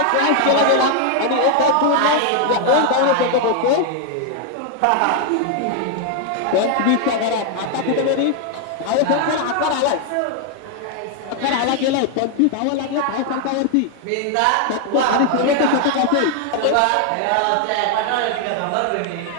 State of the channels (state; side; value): different; both; correlation 0.00